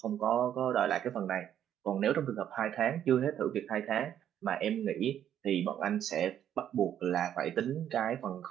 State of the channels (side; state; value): left; quieter; 10.2 dB